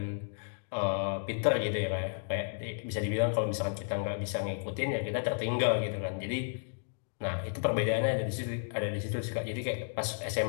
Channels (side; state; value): right; silent; digital silence